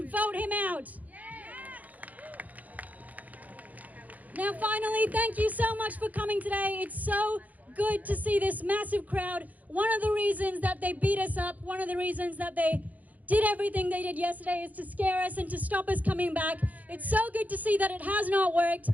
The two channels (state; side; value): late; left; 0.078 ms